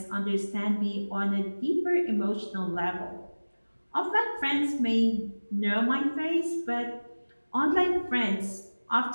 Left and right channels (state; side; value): inverted; both; correlation -1.00